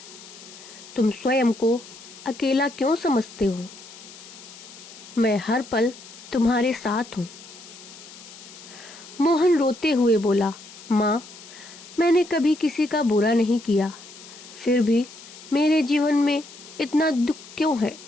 तुम स्वयं को अकेला क्यों समझते हो? मैं हर पल तुम्हारे साथ हूँ। मोहन रोते हुए बोला, माँ, मैंने कभी किसी का बुरा नहीं किया, फिर भी मेरे जीवन में इतना दुख क्यों है?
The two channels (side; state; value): left; noise; hiss, 18 dB below the sound